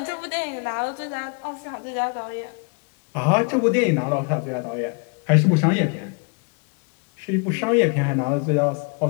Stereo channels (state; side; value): quieter; right; 36.2 dB